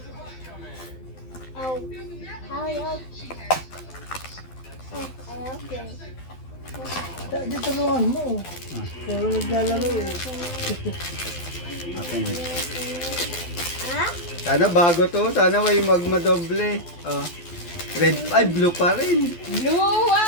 Oh, how you open? Oh, I open. Di tulungan mo. Wala naglalaro eh. Open it. Huh? Sana bago to. Sana may magmadoble. Oh. Red. Ay, blue pa rin. Blue!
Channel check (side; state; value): right; late; 12 ms